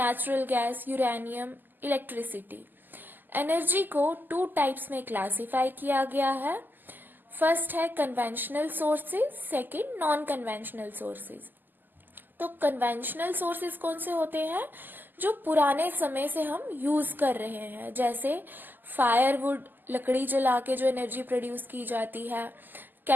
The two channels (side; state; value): left; late; 0.089 ms